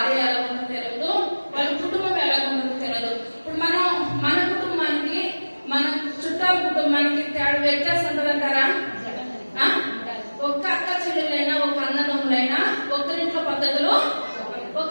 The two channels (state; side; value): inverted; both; correlation -1.00